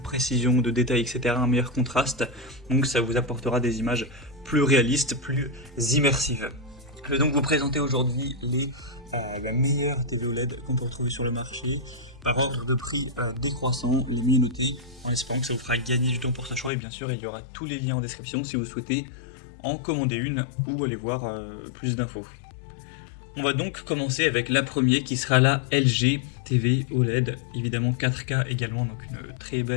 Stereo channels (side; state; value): right; drops out; at 16.7 s